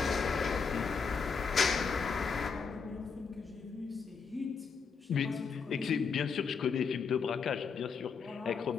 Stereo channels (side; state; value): right; quieter; 5.6 dB